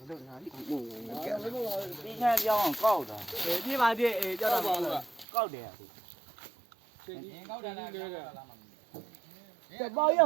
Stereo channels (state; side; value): drops out; left; at 5.2 s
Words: းချန်ပြောင်းအောင်ကောက်တာ ပြေးပါသေးအေးကြောက်တော့ပါဘူး ကောက်တယ်အခု ချိန်ကြီးကောက်တယ်လားကဲ ပါကြီးက